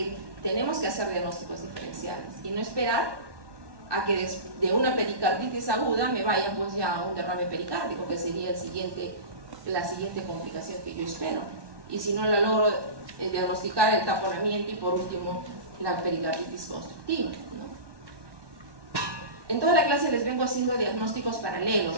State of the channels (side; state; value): left; late; 1.2 ms